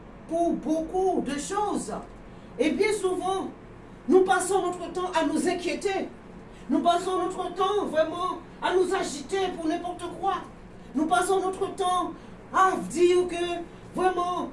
pour beaucoup de choses. Et bien souvent, nous passons notre temps à nous inquiéter. Nous passons notre temps vraiment à nous agiter pour n'importe quoi. Nous passons notre temps à dire que vraiment,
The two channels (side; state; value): both; identical; correlation 1.00